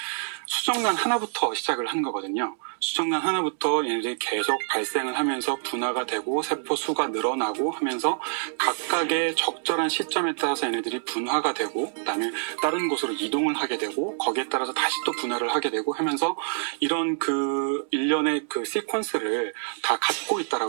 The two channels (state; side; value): silent; left; digital silence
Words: 수정란 하나부터 시작을 한 거거든요. 수정란 하나부터 얘네들이 계속 발생을 하면서 분화가 되고 세포 수가 늘어나고 하면서 각각의 적절한 시점에 따라서 얘네들이 분화가 되고 그다음에 다른 곳으로 이동을 하게 되고 거기에 따라서 다시 또 분화를 하게 되고 하면서 이런 일련의 그 시퀀스를 다 갖고